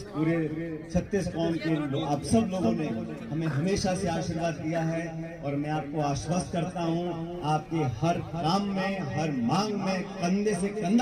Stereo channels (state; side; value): identical; both; correlation 1.00